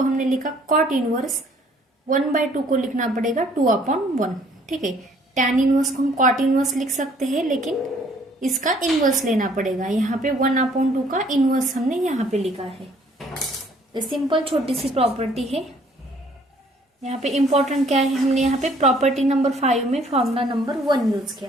हमने लिखा, कॉट इनवर्स 1/2 को लिखना पड़ेगा 2/1। ठीक है, tan इनवर्स को हम कॉट इनवर्स लिख सकते हैं लेकिन इसका इनवर्स लेना पड़ेगा। यहाँ पे 1/2 का इनवर्स हमने यहाँ पे लिखा है। तो सिंपल छोटी सी प्रॉपर्टी है। यहाँ पे इंपॉर्टेंट क्या है, हमने यहाँ पे प्रॉपर्टी नंबर 5 में फॉर्मूला नंबर 1 यूज किया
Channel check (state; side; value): normal; both; correlation 0.60